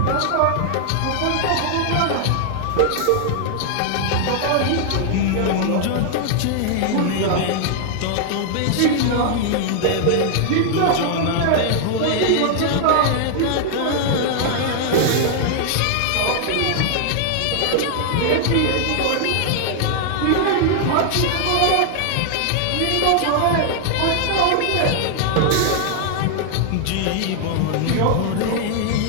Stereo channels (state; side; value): different; both; correlation 0.00